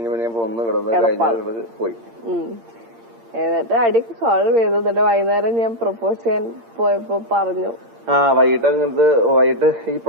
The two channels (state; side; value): late; left; 8.7 ms